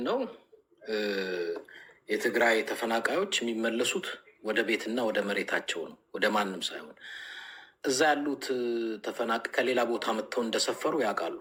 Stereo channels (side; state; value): both; identical; correlation 1.00